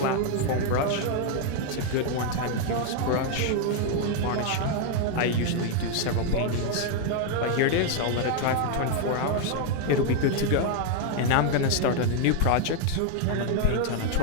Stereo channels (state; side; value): different; both; correlation 0.00